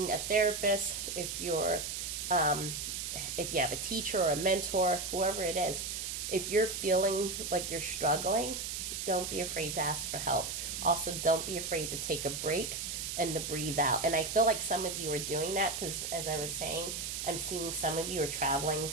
a therapist, if you have a teacher or a mentor, whoever it is, if you're feeling like you're struggling, don't be afraid to ask for help. Also, don't be afraid to take a break and to breathe out. And I feel like some of you are doing that because, as I was saying, I'm seeing some of you are traveling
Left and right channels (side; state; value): right; noise; hiss, 4 dB below the sound